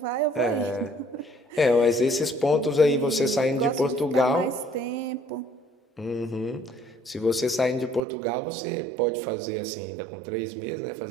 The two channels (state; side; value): drops out; left; at 8.0 s